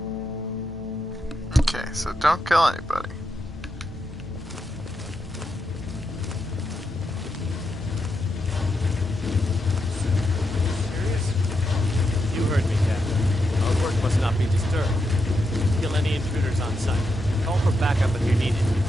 Okay, so don't kill anybody. You heard me, Captain. Our work must not be disturbed. Kill any intruders on site. Call for backup if you're needed.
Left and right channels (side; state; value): both; normal; correlation 0.84